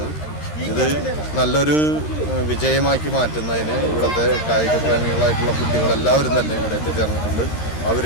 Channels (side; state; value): right; late; 13 ms